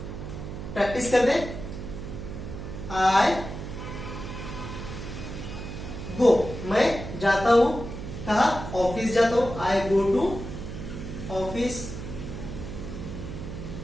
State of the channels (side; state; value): right; noise; hum, 8 dB below the sound